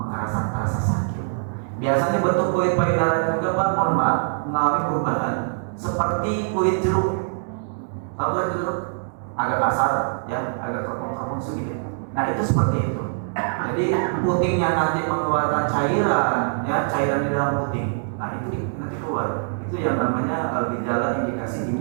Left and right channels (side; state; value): left; silent; digital silence